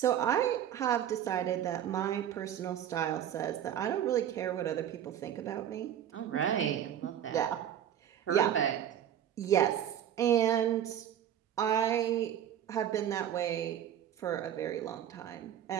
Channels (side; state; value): left; quieter; 10.2 dB